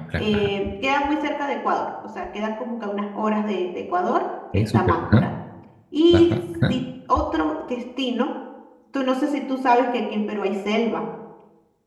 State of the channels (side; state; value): both; identical; correlation 1.00